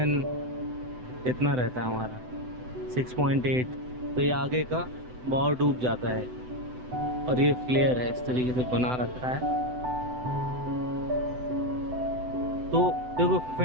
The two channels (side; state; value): left; late; 7.9 ms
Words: इतना रहता है हमारा 6.8। तो ये आगे का बहुत डूब जाता है और ये फ्लेयर है, इस तरीके से बना रखा है। तो देखो